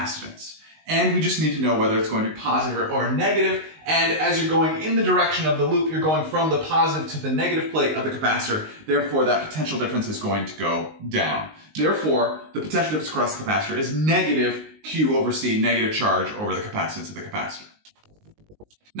And we just need to know whether it's going to be positive or negative. And as you're going in the direction of the loop, you're going from the positive to the negative plate of the capacitor. Therefore, that potential difference is going to go down. Therefore, the potential difference across the capacitor is negative Q over C, negative charge over the capacitance of the capacitor.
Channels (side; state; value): left; late; 19 ms